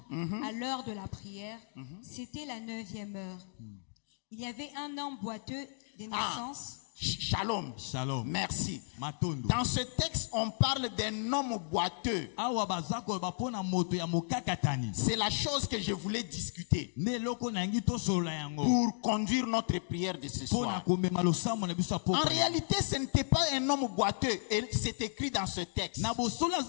à l'heure de la prière. C'était la 9e heure. Il y avait un homme boiteux de naissance. Shalom. Shalom. Merci. Dans ce texte, on parle d'un homme boiteux. C'est la chose que je voulais discuter pour conduire notre prière de ce soir. En réalité, ce n'était pas un homme boiteux, et c'est écrit dans ce texte. Parce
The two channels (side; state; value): right; silent; digital silence